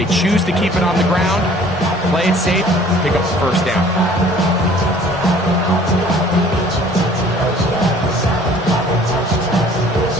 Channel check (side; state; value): both; normal; correlation 0.53